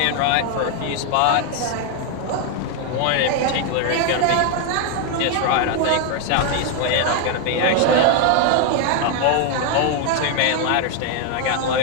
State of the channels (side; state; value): both; different; correlation 0.01